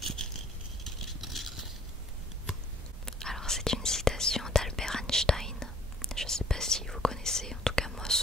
Alors c'est une citation d'Albert Einstein. Je ne sais pas si vous connaissez, en tout cas moi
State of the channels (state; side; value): normal; both; correlation 0.56